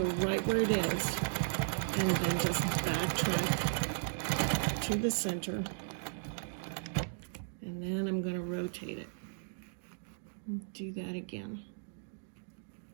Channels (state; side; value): silent; left; digital silence